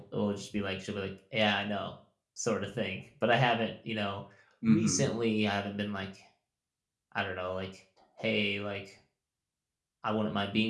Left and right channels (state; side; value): identical; both; correlation 1.00